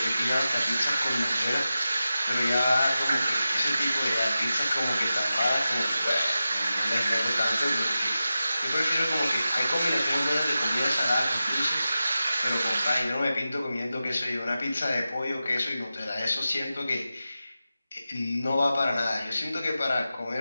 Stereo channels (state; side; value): inverted; both; correlation -0.92